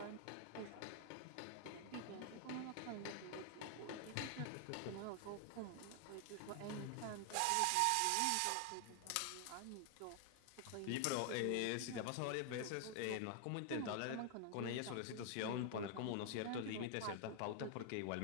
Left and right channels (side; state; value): both; different; correlation 0.00